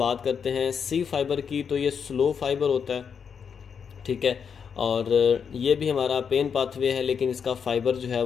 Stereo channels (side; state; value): right; quieter; 6.8 dB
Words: करते हैं सी फाइबर की। तो ये स्लो फाइबर होता है, ठीक है, और ये भी हमारा पेन पाथवे है, लेकिन इसका फाइबर जो है